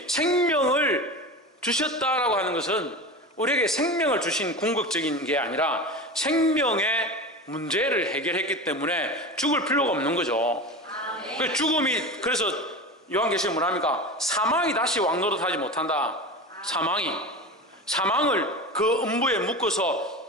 생명을 주셨다라고 하는 것은 우리에게 생명을 주신 궁극적인 게 아니라 생명의 문제를 해결했기 때문에 죽을 필요가 없는 거죠. 죽음이, 그래서 요한계시록 뭐랍니까? 사망이 다시 왕노릇하지 못한다. 사망을 그 음부에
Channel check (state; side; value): normal; both; correlation 0.28